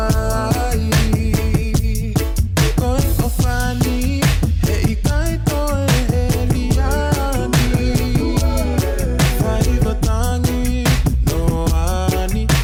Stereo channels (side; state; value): both; identical; correlation 1.00